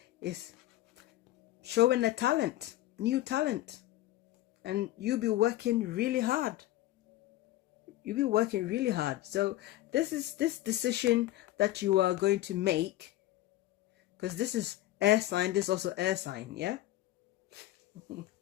is showing a talent, new talent. And you'll be working really hard. You'll be working really hard. So this decision that you are going to make, because this is air sign, this is also air sign, yeah?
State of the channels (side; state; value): right; quieter; 15.4 dB